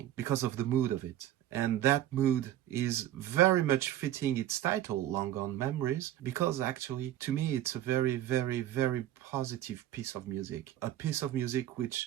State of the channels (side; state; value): left; quieter; 12.7 dB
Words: because of the mood of it. And that mood is very much fitting its title, Long Gone Memories, because actually, to me, it's a very, very, very positive piece of music. A piece of music